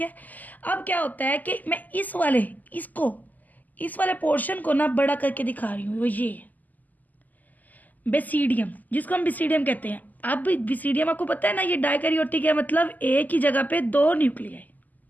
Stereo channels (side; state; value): right; late; 0.082 ms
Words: है। अब क्या होता है कि मैं इस वाले पोर्शन को ना बड़ा करके दिखा रही हूँ। वो ये बेसिडियम, जिसको हम बेसिडियम कहते हैं। अब बेसिडियम आपको पता है ना, ये डायकैरियोटिक है, मतलब एक ही जगह पे दो न्यूक्लियाई,